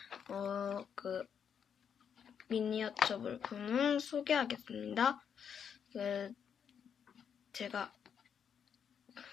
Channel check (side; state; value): right; quieter; 7.7 dB